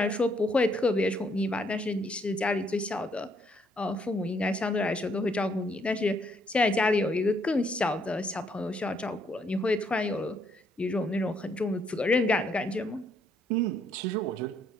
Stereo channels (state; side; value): normal; both; correlation 0.71